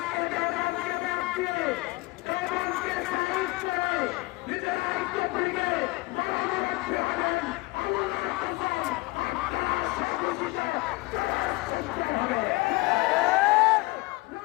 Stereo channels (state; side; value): quieter; right; 22.4 dB